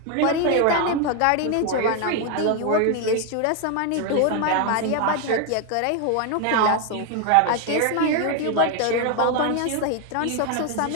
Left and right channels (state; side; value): different; both; correlation 0.01